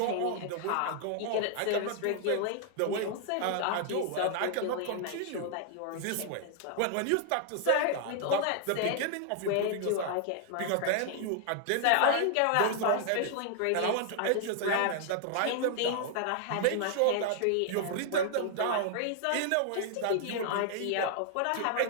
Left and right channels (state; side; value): different; both; correlation -0.01